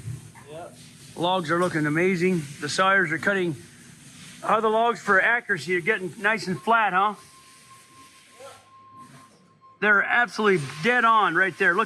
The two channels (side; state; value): both; identical; correlation 1.00